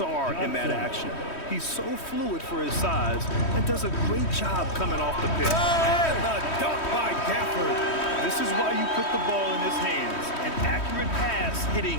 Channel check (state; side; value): late; right; 3.1 ms